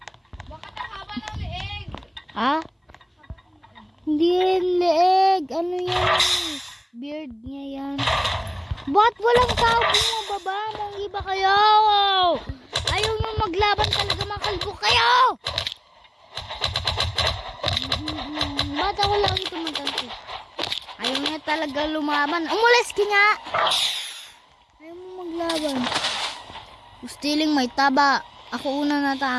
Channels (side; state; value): both; identical; correlation 1.00